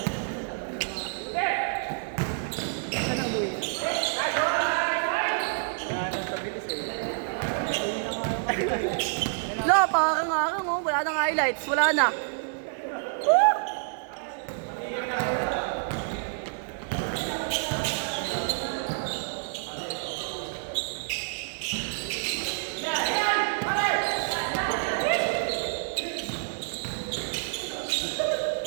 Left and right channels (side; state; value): left; silent; digital silence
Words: Lo, pakakang-akang oh. Wala nang highlights. Wala na.